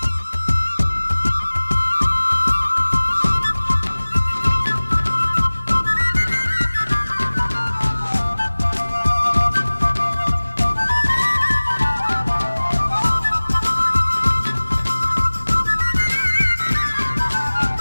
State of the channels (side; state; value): both; inverted; correlation -1.00